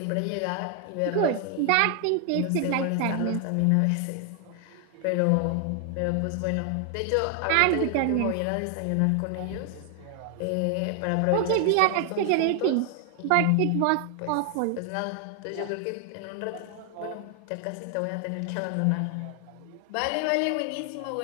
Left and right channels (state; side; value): different; both; correlation 0.00